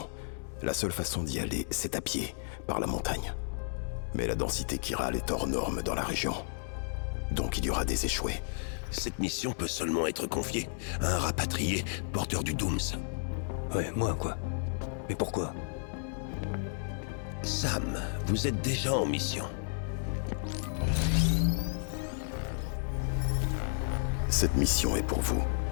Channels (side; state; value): right; silent; digital silence